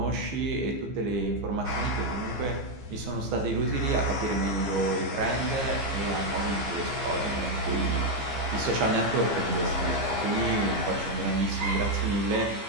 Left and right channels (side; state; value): left; late; 15 ms